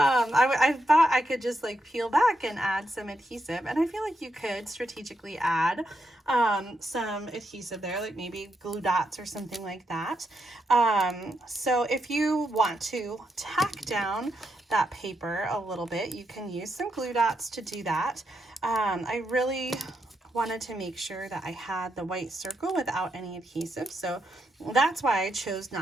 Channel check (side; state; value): both; normal; correlation 0.82